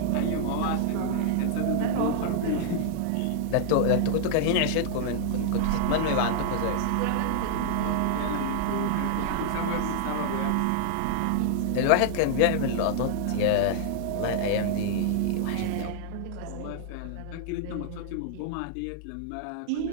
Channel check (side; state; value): both; different; correlation -0.01